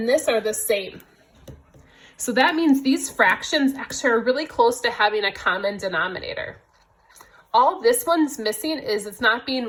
this are the same. So that means these fractions actually are really close to having a common denominator. All this one's missing is it's not being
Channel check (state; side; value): identical; both; correlation 1.00